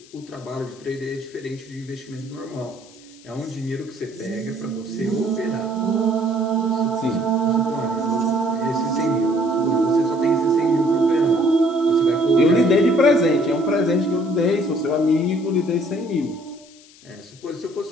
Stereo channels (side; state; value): left; noise; hiss, 24 dB below the sound